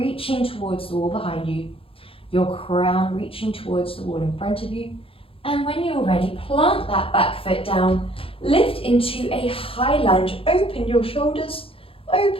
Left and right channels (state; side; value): late; right; 0.27 ms